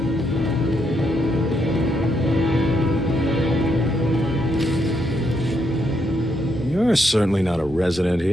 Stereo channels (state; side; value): normal; both; correlation 0.78